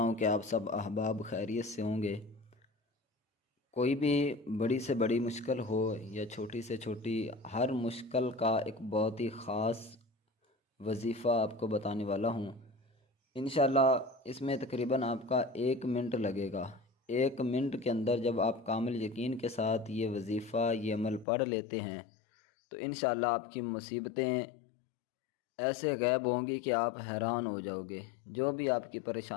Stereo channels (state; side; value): drops out; right; at 21.2 s